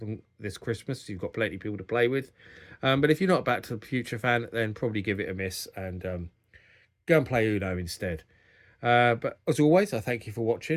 this Christmas. You've got plenty of people to play with. But if you're not a Back to the Future fan, then probably give it a miss and go and play Uno instead. But as always, I thank you for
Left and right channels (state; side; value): identical; both; correlation 1.00